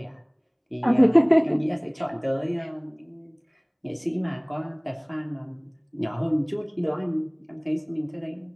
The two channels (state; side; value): identical; both; correlation 1.00